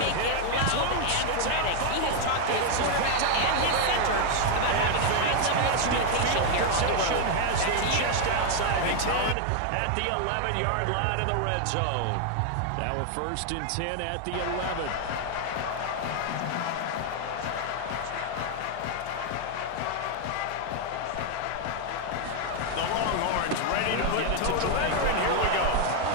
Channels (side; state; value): both; different; correlation 0.00